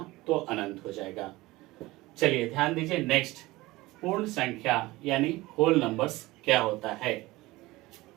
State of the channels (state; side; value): quieter; left; 19.8 dB